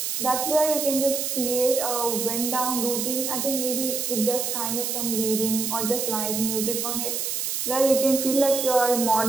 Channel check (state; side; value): noise; right; hiss, 2 dB below the sound